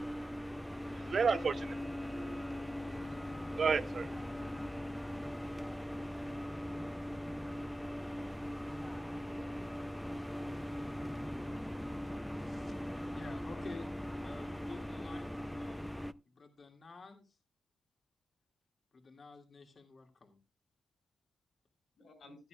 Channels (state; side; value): normal; both; correlation 0.94